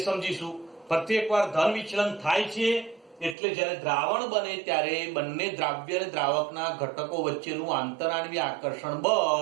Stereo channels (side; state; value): left; drops out; at 3.4 s